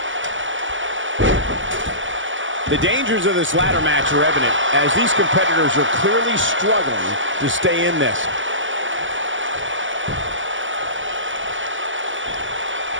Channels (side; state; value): left; late; 0.56 ms